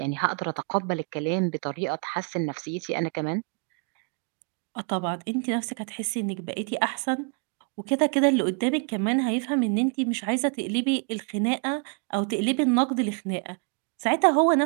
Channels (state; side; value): quieter; left; 38.8 dB